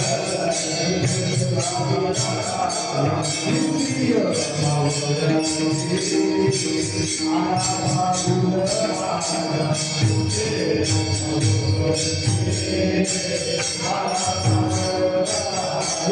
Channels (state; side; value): identical; both; correlation 1.00